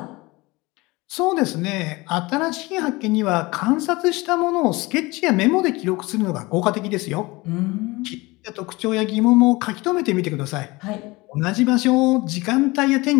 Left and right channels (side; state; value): right; quieter; 22.6 dB